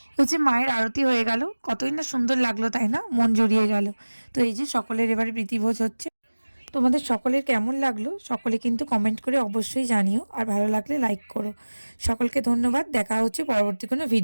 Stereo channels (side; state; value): both; inverted; correlation -1.00